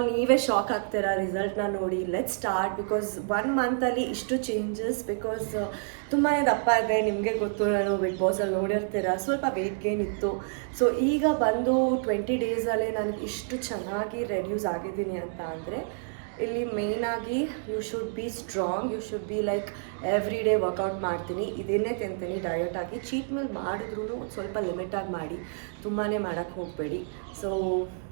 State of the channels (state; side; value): silent; left; digital silence